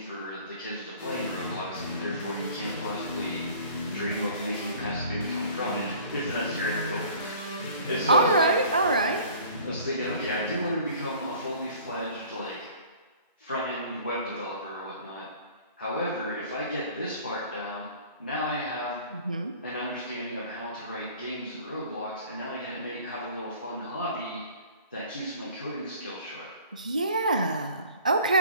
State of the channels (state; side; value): inverted; both; correlation -0.49